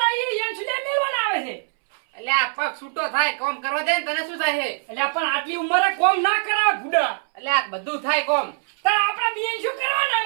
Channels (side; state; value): left; silent; 64 dB below the other